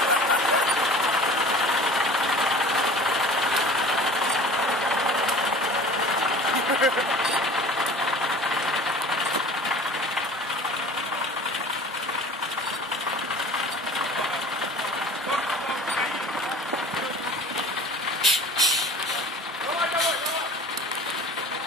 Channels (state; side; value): normal; both; correlation 0.42